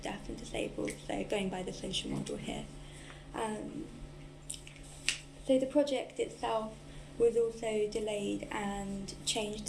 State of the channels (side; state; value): both; identical; correlation 1.00